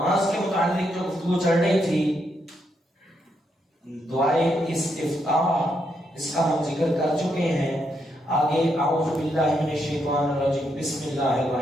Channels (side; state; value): both; normal; correlation 0.79